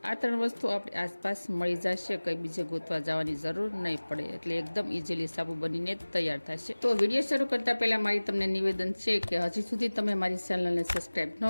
આ 3 વસ્તુ આપણે આસપાસ મળી જશે, કંઈ બીજે ગોતવા જવાની જરૂર નહીં પડે, એટલે એકદમ ઇઝીલી સાબુ બનીને તૈયાર થશે. તો વિડીયો શરૂ કરતા પહેલા મારી તમને નિવેદન છે કે હજી સુધી તમે મારી ચેનલને સબસ્ક્રાઇબ ન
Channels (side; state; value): both; inverted; correlation -1.00